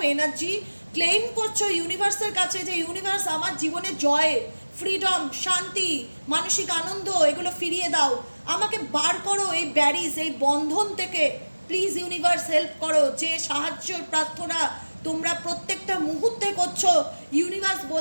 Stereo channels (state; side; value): inverted; both; correlation -1.00